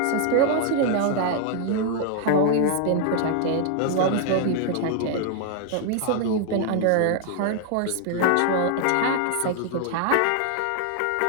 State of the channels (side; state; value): both; different; correlation 0.00